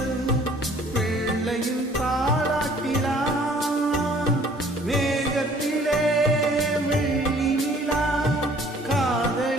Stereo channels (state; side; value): normal; both; correlation 0.56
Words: பிள்ளையின் தாலாட்டிலா. மேகத்திலே வெள்ளி நிலா,